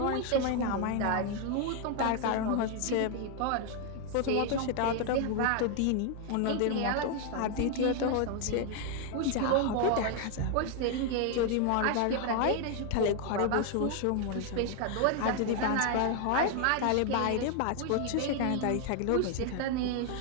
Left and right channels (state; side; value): different; both; correlation 0.00